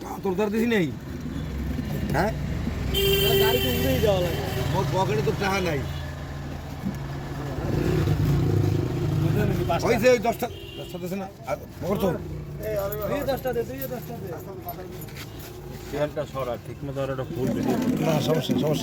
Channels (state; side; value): identical; both; correlation 1.00